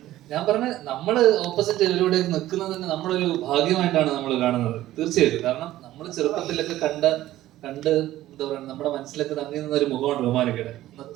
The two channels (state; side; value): quieter; left; 14.6 dB